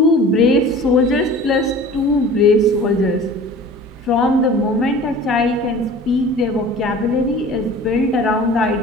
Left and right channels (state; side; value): normal; both; correlation 0.42